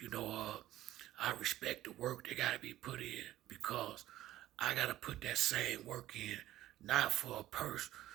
I respect the work that gotta be put in, because I gotta put that same work in, not for a purse,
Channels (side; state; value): left; quieter; 14.3 dB